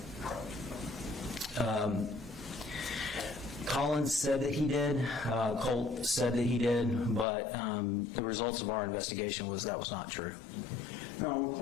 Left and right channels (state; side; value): drops out; right; at 7.2 s